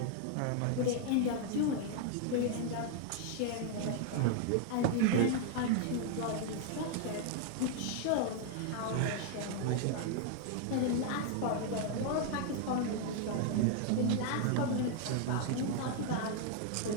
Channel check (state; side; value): different; both; correlation 0.00